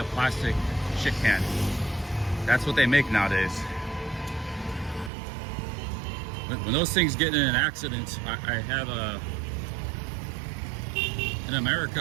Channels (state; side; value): drops out; left; at 5.1 s